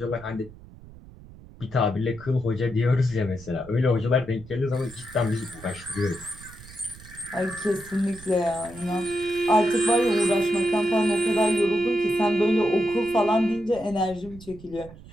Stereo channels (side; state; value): right; noise; rumble, 19 dB below the sound